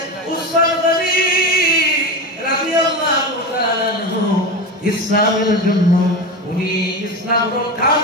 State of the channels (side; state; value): both; normal; correlation 0.22